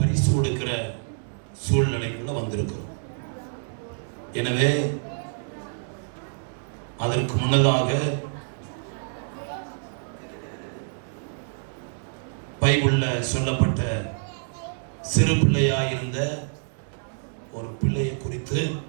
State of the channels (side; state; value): left; silent; digital silence